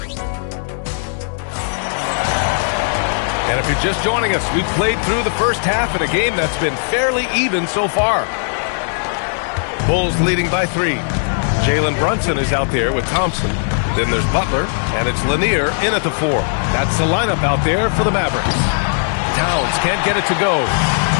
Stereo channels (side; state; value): right; silent; digital silence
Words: if you're just joining us, we've played through the first half in a game that's been fairly even so far. Bulls leading by 3. Jalen Brunson is out there with Thompson. Then there's Butler, and it's Lanier in at the 4. That's the lineup out there for the Mavericks. Towns can't get it to go.